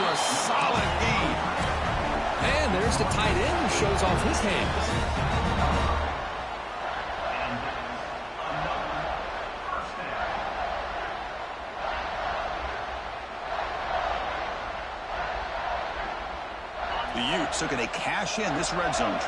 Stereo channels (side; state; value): both; identical; correlation 1.00